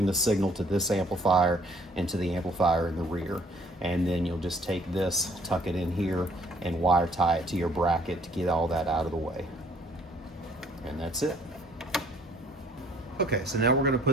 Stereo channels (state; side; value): normal; both; correlation 0.60